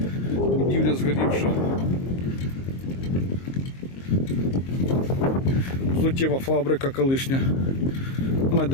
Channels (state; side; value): late; right; 22 ms